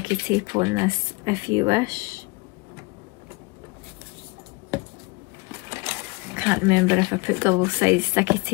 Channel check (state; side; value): quieter; right; 25.9 dB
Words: tape on this if you wish. I can't remember if I put double-sided sticky